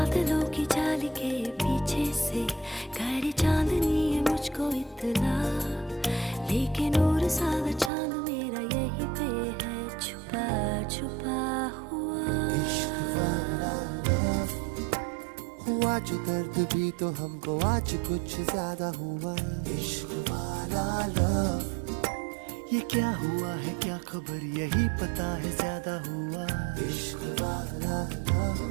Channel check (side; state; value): left; drops out; at 7.9 s